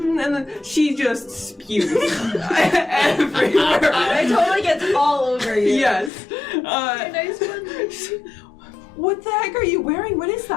then she just spews everywhere. It totally gets all over you. Yes. Nice one. What the heck are you wearing? What is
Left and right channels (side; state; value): right; drops out; at 6.1 s